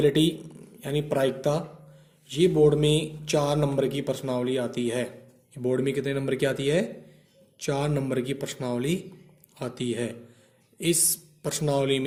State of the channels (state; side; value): identical; both; correlation 1.00